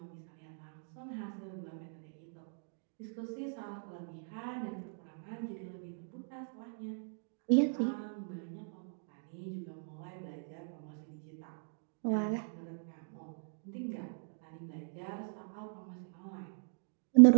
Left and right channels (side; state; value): left; silent; digital silence